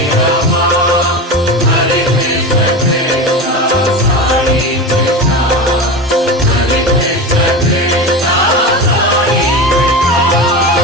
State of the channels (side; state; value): both; normal; correlation 0.25